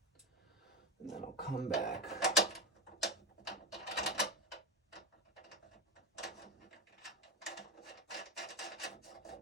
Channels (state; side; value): normal; both; correlation 0.17